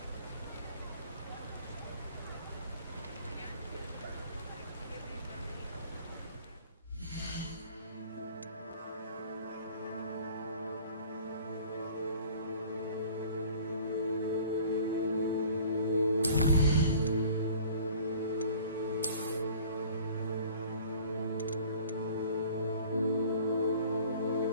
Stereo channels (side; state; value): both; inverted; correlation -0.49